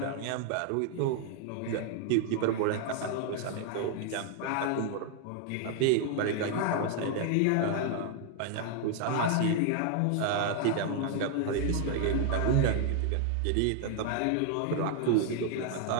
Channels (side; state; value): both; different; correlation 0.00